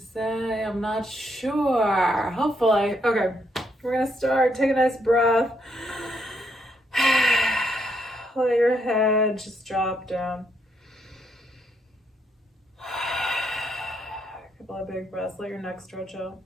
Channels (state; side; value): normal; both; correlation 0.75